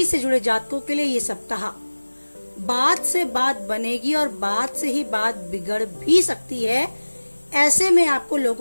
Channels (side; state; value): both; inverted; correlation -1.00